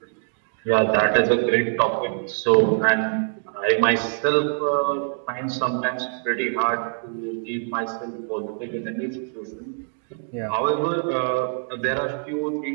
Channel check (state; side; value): silent; left; 63 dB below the other